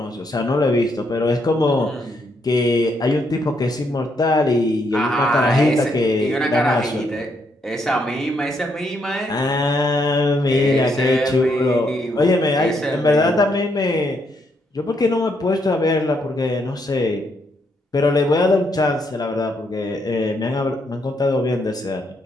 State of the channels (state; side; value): normal; both; correlation 0.75